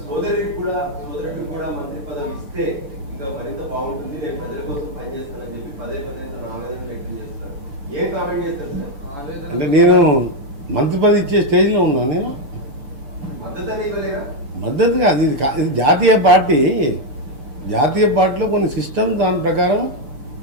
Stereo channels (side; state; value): left; late; 7.1 ms